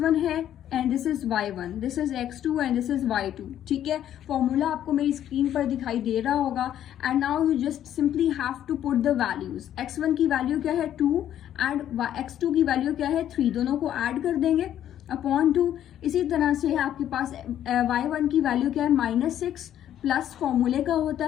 है and this is y1, this is x2 and this is y2. ठीक है. फॉर्मूला आपको मेरी स्क्रीन पर दिखाई दे रहा होगा and now you just simply have to put the values. x1 की वैल्यू क्या है? 2 एंड x2 की वैल्यू क्या है? 3. दोनों को ऐड कर देंगे अपॉन 2. इसी तरह से आपके पास y1 की वैल्यू क्या है? -6 प्लस फॉर्मूले का होता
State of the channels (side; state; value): right; quieter; 11.0 dB